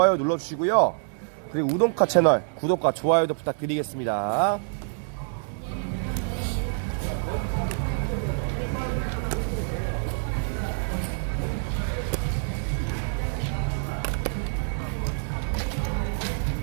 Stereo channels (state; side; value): silent; left; digital silence